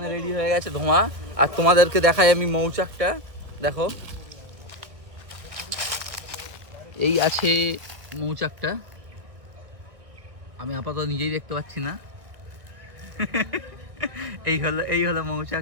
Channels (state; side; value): late; left; 1.5 ms